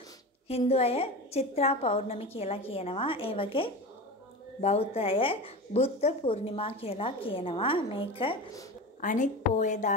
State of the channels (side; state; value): both; normal; correlation 0.28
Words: හින්දු අය චිත්‍රා පෞර්ණමි කියලා කියනවා. ඒ වගේ බෞද්ධ අය බුද්ධ පූර්ණිමා කියලා කියනවා. මේක අනිත්